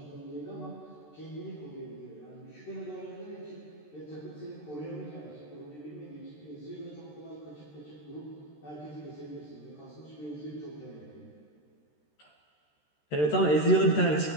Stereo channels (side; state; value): right; late; 13 ms